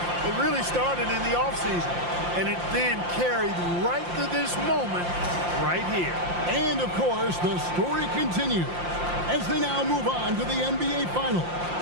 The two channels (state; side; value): late; left; 5.7 ms